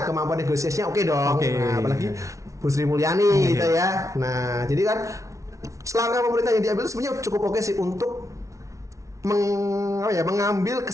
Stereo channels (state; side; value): late; left; 0.15 ms